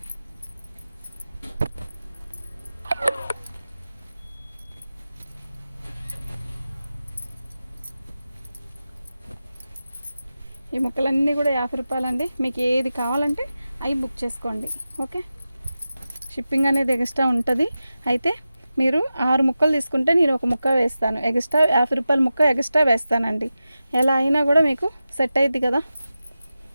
ఈ ముక్కలన్నీ కూడా 50 రూపాయలండి. మీకు ఏది కావాలంటే అవి బుక్ చేసుకోండి. ఓకే, షిప్పింగ్ అనేది ఎక్స్ట్రా ఉంటుంది. అయితే మీరు 6 ముక్కలు తీసుకుంటే నేను ఒక ముక్క వేస్తాను ఎక్స్ట్రా. 50 రూపాయల ముక్క ఎక్స్ట్రా వేస్తానండి. ఎలా అయినా కూడా మీకు సెట్ అయ్యిద్ది కదా.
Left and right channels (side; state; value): both; inverted; correlation -0.93